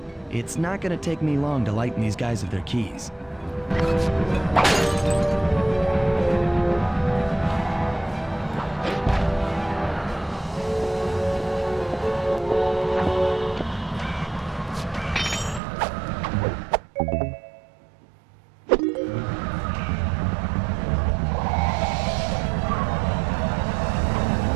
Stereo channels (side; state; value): left; drops out; at 15.6 s